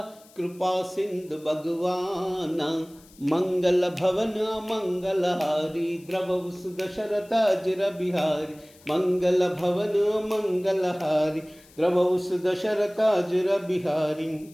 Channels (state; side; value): noise; left; hiss, 26 dB below the sound